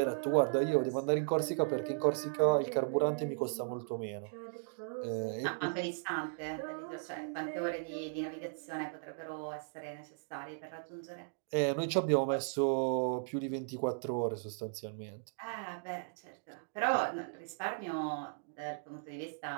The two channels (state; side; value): silent; left; digital silence